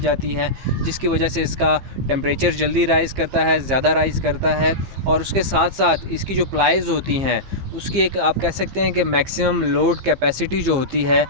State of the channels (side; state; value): left; late; 15 ms